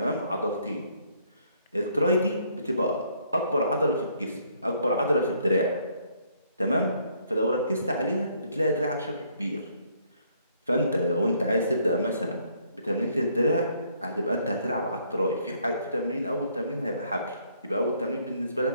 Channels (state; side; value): inverted; both; correlation -0.66